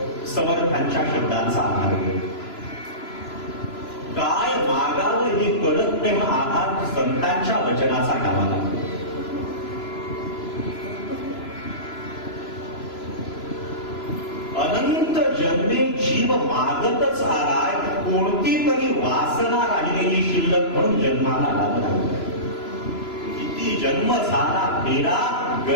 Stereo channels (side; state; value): right; late; 3.0 ms